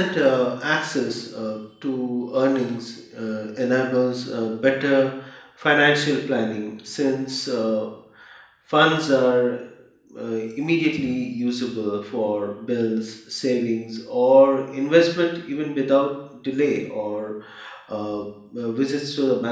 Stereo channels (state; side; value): identical; both; correlation 1.00